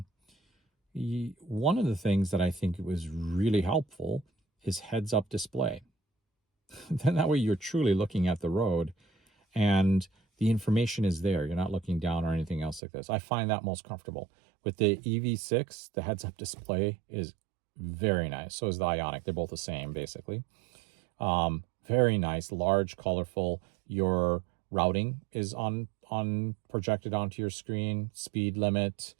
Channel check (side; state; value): left; drops out; at 12.8 s